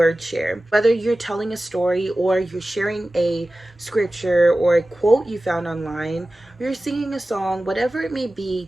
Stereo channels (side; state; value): both; normal; correlation 0.96